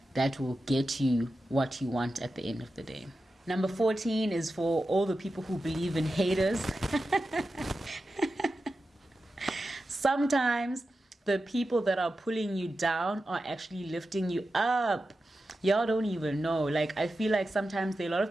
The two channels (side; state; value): both; normal; correlation 0.91